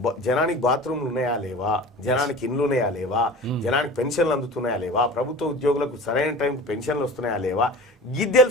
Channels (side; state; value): both; normal; correlation 0.37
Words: జనానికి బాత్రూమ్లు ఉన్నాయా లేవా, జనానికి ఇండ్లు ఉన్నాయా లేవా, జనానికి పెన్షన్లు అందుతున్నాయా లేవా, ప్రభుత్వ ఉద్యోగులకు సరైన టైంకి పెన్షన్లు వస్తున్నాయా లేవా, గిది